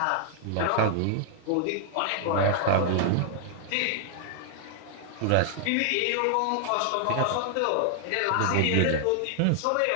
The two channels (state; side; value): different; both; correlation 0.00